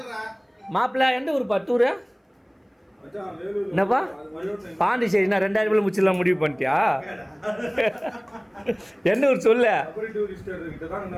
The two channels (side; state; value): both; identical; correlation 1.00